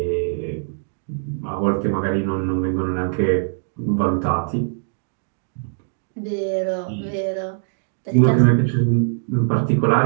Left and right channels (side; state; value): left; silent; digital silence